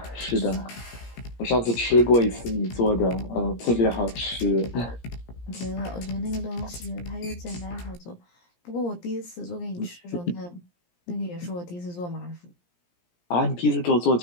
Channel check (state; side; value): late; right; 17 ms